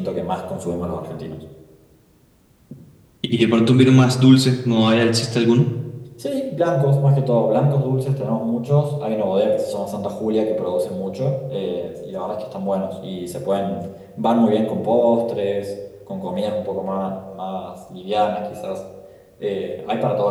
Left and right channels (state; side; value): identical; both; correlation 1.00